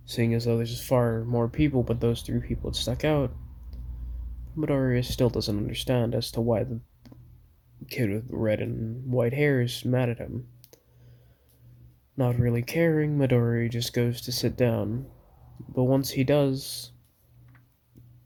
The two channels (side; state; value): both; identical; correlation 1.00